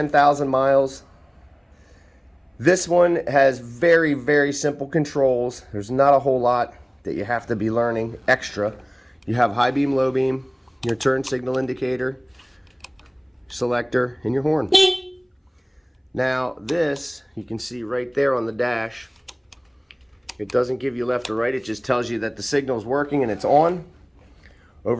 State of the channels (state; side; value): identical; both; correlation 1.00